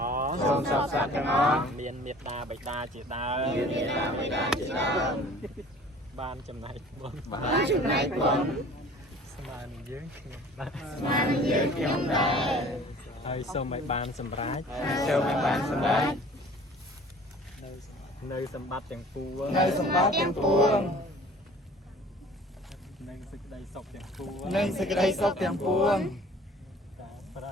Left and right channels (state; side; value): normal; both; correlation 0.48